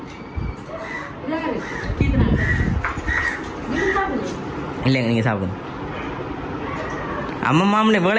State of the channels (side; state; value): both; identical; correlation 1.00